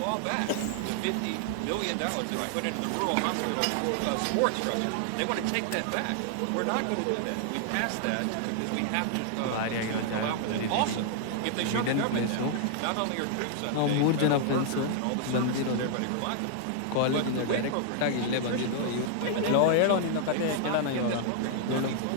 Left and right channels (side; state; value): both; different; correlation 0.00